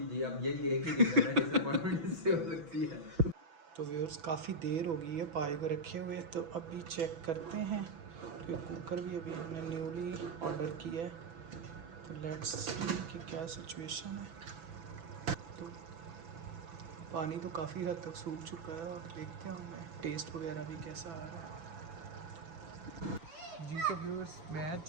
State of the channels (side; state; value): left; late; 6.1 ms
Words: जी, अब यही एक ही रीज़न है डिसअपॉइंटमेंट इससे हो सकती है। तो व्यूअर्स, काफ़ी देर हो गई है पाए को रखे हुए, तो अभी चेक करते हैं। तो कुकर भी अभी हमने न्यूली ऑर्डर किया है, तो लेट्स सी कि क्या सिचुएशन है। तो पानी तो काफ़ी हद तक सूख चुका है और देखते हैं हमें टेस्ट वगैरह भी कैसा आ रहा है। जी तो व्यूअर्स, मैच